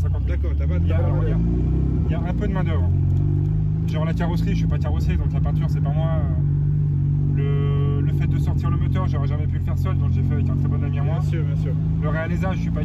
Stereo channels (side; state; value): both; identical; correlation 1.00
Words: 000. D'accord, t'as pas de Il y a main-d'œuvre. un peu de main d'œuvre. Genre la carrosserie, je suis pas carrossier, donc la peinture c'est pas moi. Le fait de sortir le moteur, j'aurais jamais pu le faire seul, donc j'ai fait avec un très bon ami à moi. Bien sûr, bien sûr. Le réalisage, je suis pas